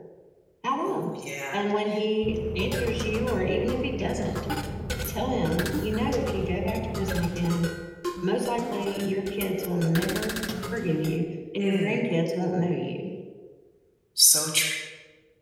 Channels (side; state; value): both; identical; correlation 1.00